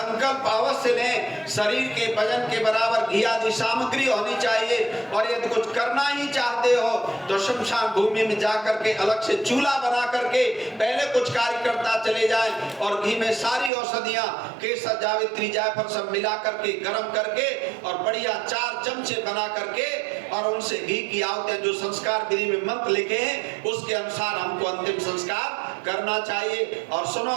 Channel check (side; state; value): left; drops out; at 13.7 s